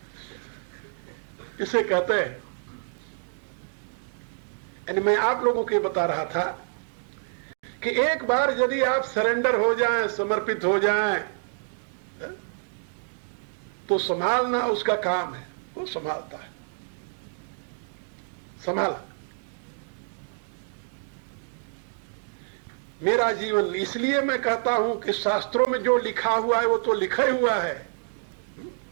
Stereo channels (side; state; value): left; silent; digital silence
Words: इसे कहते हैं। यानी मैं आप लोगों को बता रहा था कि एक बार यदि आप सरेंडर हो जाएं, समर्पित हो जाएं, तो संभालना उसका काम है, वो संभालता है। संभाला। मेरा जीवन, इसलिए मैं कहता हूं कि शास्त्रों में जो लिखा हुआ है वो तो लिखा हुआ है,